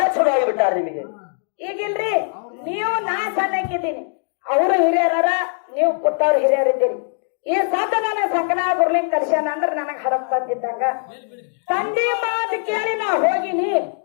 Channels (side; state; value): right; silent; digital silence